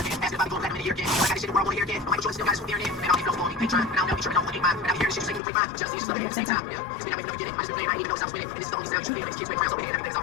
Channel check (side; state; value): right; drops out; at 5.4 s